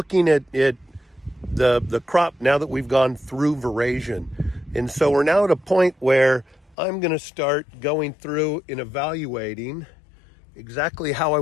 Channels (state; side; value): drops out; right; at 6.8 s